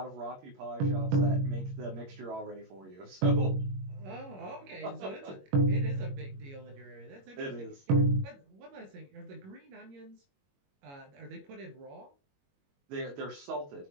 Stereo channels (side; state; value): left; late; 21 ms